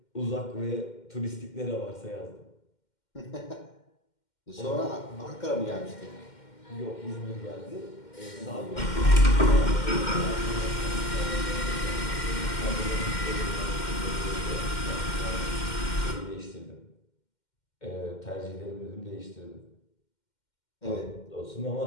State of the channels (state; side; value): late; right; 2.1 ms